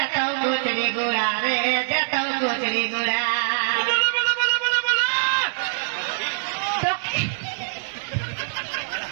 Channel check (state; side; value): silent; left; digital silence